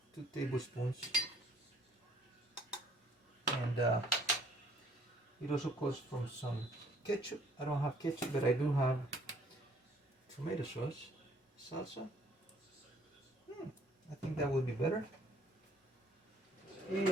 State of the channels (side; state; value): both; normal; correlation 0.61